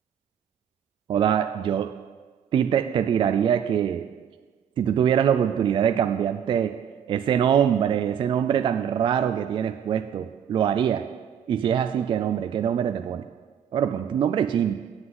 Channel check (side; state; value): left; quieter; 8.6 dB